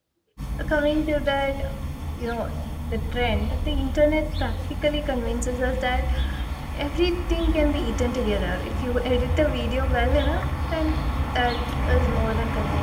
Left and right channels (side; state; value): both; identical; correlation 1.00